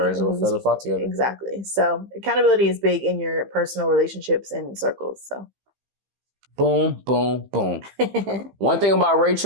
will feather flock together. Exactly. So accountability is big in your personal relationships and circles. So. Boom, boom, boom. One thing about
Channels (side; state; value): left; late; 15 ms